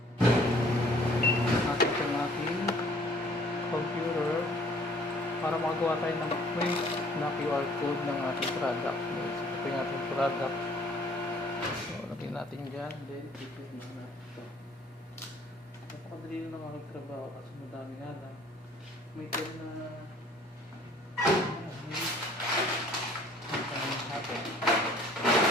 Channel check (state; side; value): normal; both; correlation 0.56